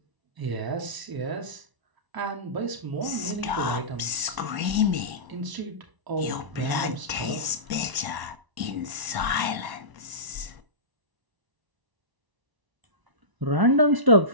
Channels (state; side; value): late; left; 1.0 ms